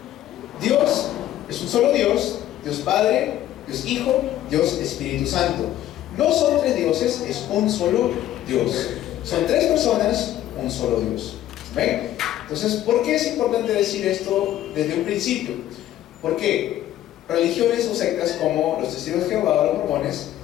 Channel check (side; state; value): right; quieter; 12.9 dB